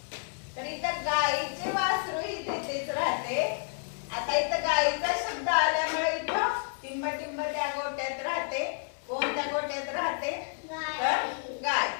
तर इथं गायीचे वासरू ही तेथेच राहते. आता इथं गायीचा शब्द आल्यामुळे इथं टिंबटिंब त्या गोठ्यात राहते. कोण त्या गोठ्यात राहते? तर गाय.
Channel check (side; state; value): right; silent; digital silence